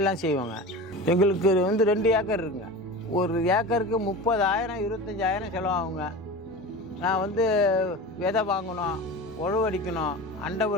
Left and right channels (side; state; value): both; normal; correlation 0.31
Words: செய்வாங்க. எங்களுக்கு 2 ஏக்கர் இருக்குங்க. ஒரு ஏக்கருக்கு 30,000 25,000 செலவாகுங்க. நான் விதை வாங்கணும், உழவு அடிக்கணும், அண்டை